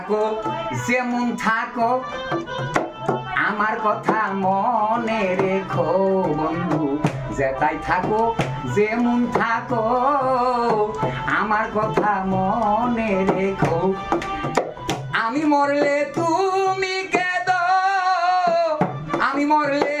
যেমন থাকো আমার কথা মনে রেখো বন্ধু, যেতাই থাকো যেমন থাকো আমার কথা মনে রেখো। আমি মরলে তুমি কেঁদো, আমি মরলে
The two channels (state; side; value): identical; both; correlation 1.00